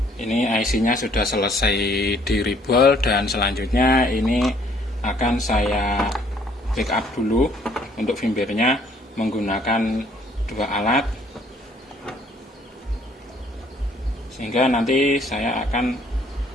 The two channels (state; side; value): normal; both; correlation 0.62